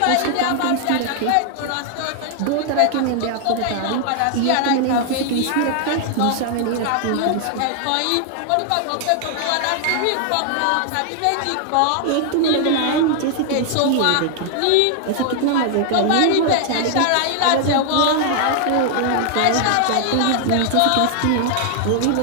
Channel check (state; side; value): different; both; correlation 0.00